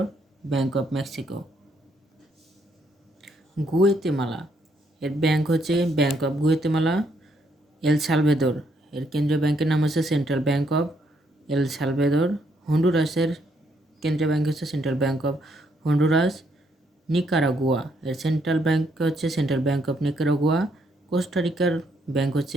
ব্যাংক অফ মেক্সিকো। গুয়েতেমালা এর ব্যাংক হচ্ছে bank of Guatemala. El Salvador এর কেন্দ্রীয় ব্যাংকের নাম হচ্ছে central bank of El Salvador. হন্ডুরাসের কেন্দ্রীয় ব্যাংক হচ্ছে central bank of Honduras, Nicaragua এর সেন্ট্রাল ব্যাংক হচ্ছে সেন্ট্রাল ব্যাংক অফ নিকারাগুয়া। কোস্টারিকার ব্যাংক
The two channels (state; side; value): normal; both; correlation 0.73